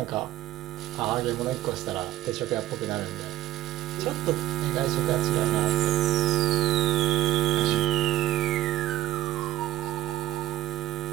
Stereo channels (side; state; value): left; quieter; 14.6 dB